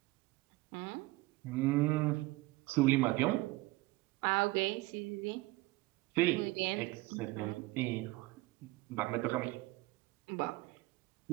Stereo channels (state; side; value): quieter; left; 20.5 dB